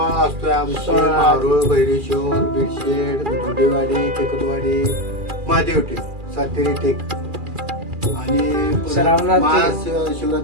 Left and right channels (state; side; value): late; left; 2.4 ms